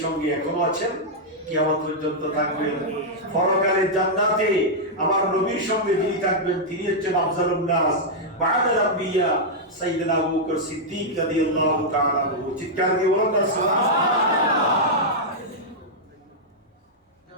সঙ্গে এখনো আছেন, কিয়ামত পর্যন্ত থাকবেন। পরকালের জান্নাতে আমার নবীর সঙ্গে যিনি থাকবেন তিনি হচ্ছেন আফজালুন নাস বা'দাল আম্বিয়া সাইয়্যিদুনা আবু বকর সিদ্দিক রাদিয়াল্লাহু তাআলা আনহু। চিৎকার দিয়ে বলুন না সুবহানাল্লাহ।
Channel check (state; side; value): normal; both; correlation -0.06